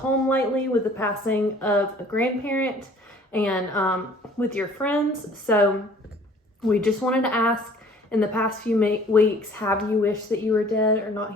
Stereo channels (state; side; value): normal; both; correlation 0.53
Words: lately with the passing of a grandparent and with your friends. So we just wanted to ask, in the past few weeks, have you wished that you were dead or not